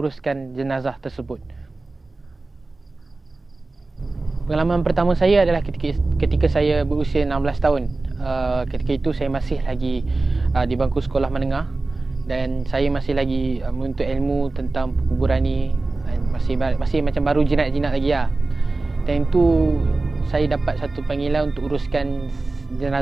jenazah tersebut. Pengalaman pertama saya adalah ketika saya berusia 16 tahun. Ketika itu saya masih lagi di bangku sekolah menengah, dan saya masih lagi menuntut ilmu tentang perkuburan ni. Masih macam baru jinak-jinak lagi lah. Dan itu saya dapat satu panggilan untuk uruskan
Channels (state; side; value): quieter; left; 3.3 dB